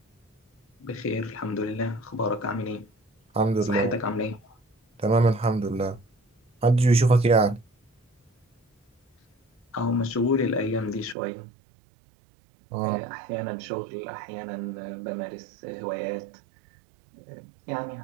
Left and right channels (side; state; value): left; drops out; at 11.2 s